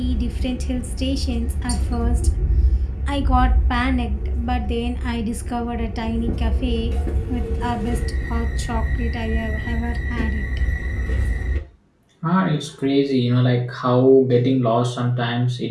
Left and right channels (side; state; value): both; identical; correlation 1.00